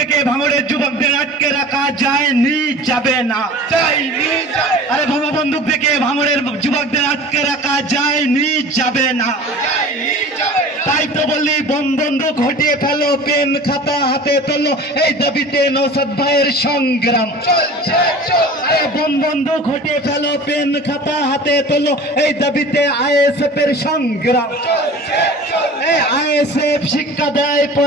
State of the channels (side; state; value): both; normal; correlation 0.40